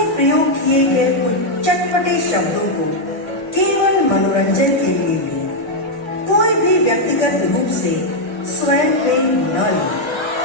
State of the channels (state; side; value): late; right; 1.6 ms